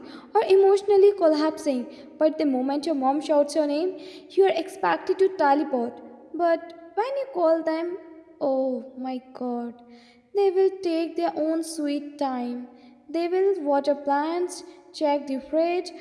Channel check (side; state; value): both; identical; correlation 1.00